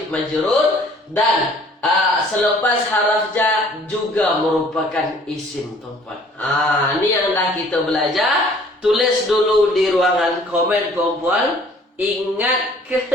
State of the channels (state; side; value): normal; both; correlation 0.55